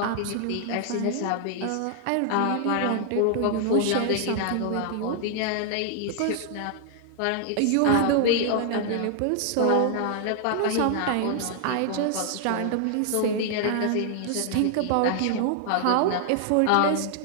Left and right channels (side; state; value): both; different; correlation 0.00